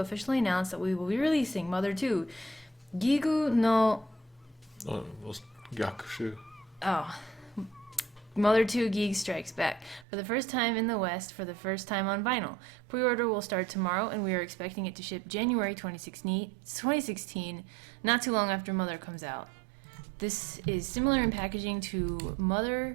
announce that we will be releasing Mother 2, Gigu no... Yakushu. Mother 2 Geek Strikes Back for the first time in the West for the first time on vinyl. Pre-order will start tomorrow, and we are expecting it to ship January 2016, not too long after Mother comes out. This is similar in packaging to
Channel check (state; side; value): drops out; left; at 10.1 s